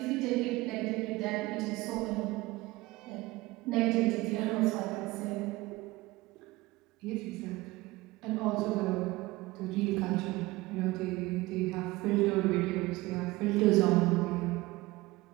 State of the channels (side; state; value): left; quieter; 20.2 dB